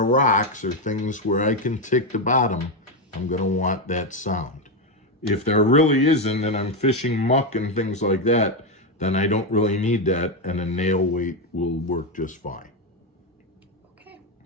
rocks or things where I can tick the bottom, I'm going to want that sound. If there really isn't and I'm fishing muck and things like that, then I don't really need that, and a nail weight will work just fine. Okay.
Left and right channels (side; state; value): both; normal; correlation 0.08